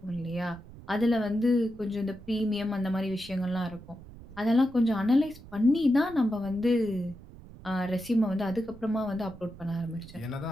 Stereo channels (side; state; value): right; noise; rumble, 18 dB below the sound